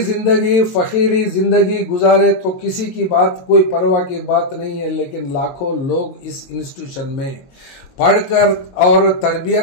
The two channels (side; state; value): right; late; 22 ms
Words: जिंदगी फकीरी जिंदगी गुजारे तो किसी की बात कोई परवाह की बात नहीं है, लेकिन लाखों लोग इस इंस्टीट्यूशन में पढ़कर और